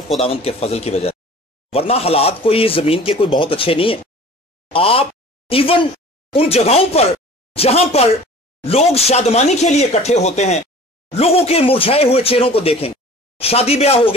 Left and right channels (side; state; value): both; normal; correlation 0.44